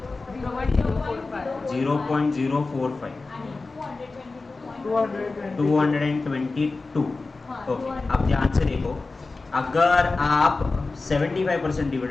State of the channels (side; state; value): right; quieter; 3.7 dB